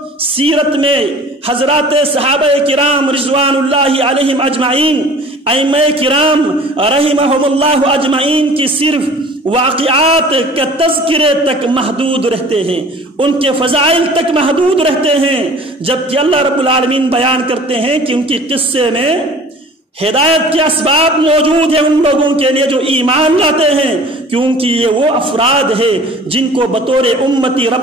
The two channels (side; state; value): both; normal; correlation 0.46